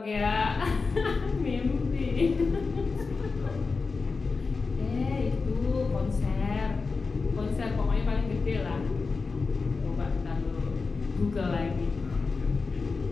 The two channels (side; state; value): right; quieter; 4.4 dB